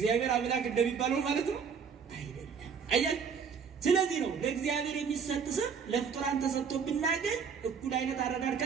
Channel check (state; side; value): quieter; left; 6.3 dB